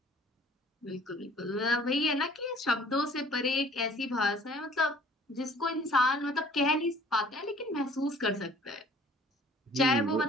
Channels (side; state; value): both; normal; correlation 0.53